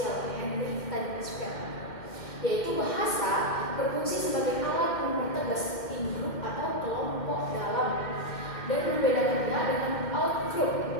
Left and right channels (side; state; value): right; late; 2.1 ms